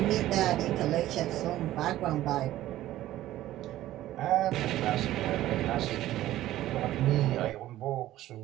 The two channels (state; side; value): quieter; left; 14.5 dB